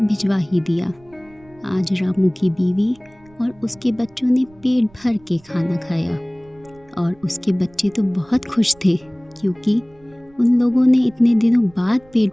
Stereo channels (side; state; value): right; noise; rumble, 28 dB below the sound